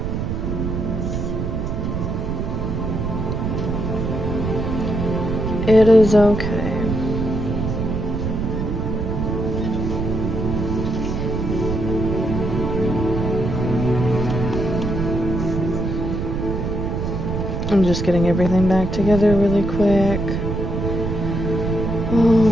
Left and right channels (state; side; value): noise; right; rumble, 2 dB below the sound